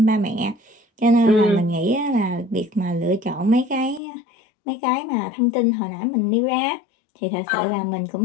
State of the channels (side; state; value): right; drops out; at 4.0 s